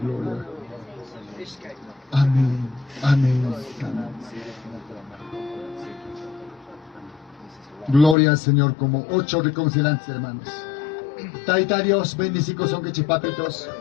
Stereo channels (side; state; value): right; drops out; at 8.2 s